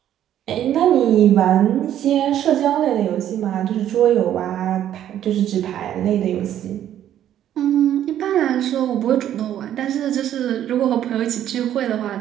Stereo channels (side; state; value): left; quieter; 11.1 dB